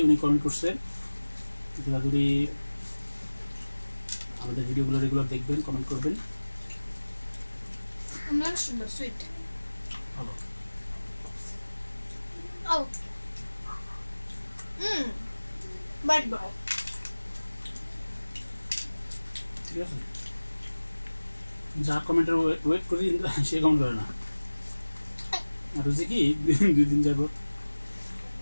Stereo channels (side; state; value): both; inverted; correlation -1.00